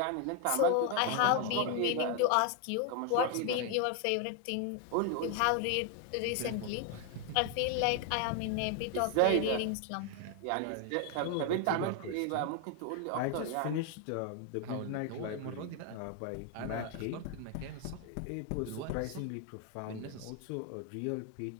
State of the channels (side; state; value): both; different; correlation 0.01